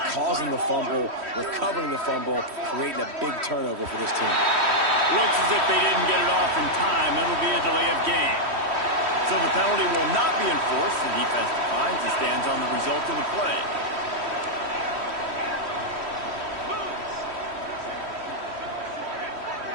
causing the fumble, recovering the fumble, creating a big turnover for this team. Looks as if they didn't get it off in time. It'll be a delay of game. So the penalty will not be enforced. The defense declines and stands on the result of the play.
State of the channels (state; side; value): late; left; 3.1 ms